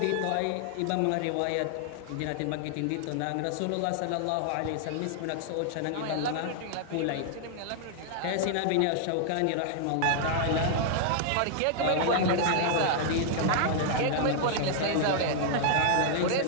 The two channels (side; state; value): both; different; correlation 0.00